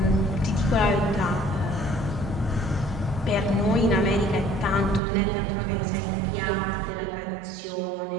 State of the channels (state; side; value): drops out; left; at 5.0 s